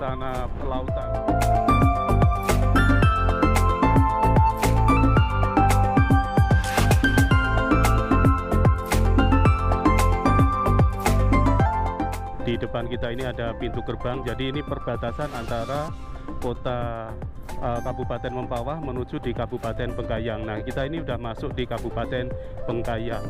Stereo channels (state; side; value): identical; both; correlation 1.00